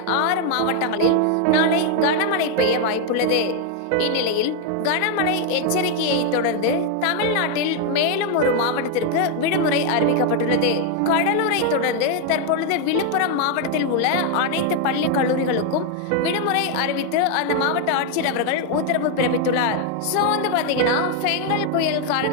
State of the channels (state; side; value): different; both; correlation 0.01